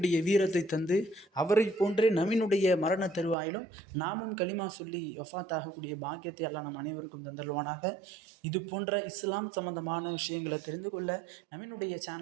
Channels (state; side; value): drops out; left; at 3.4 s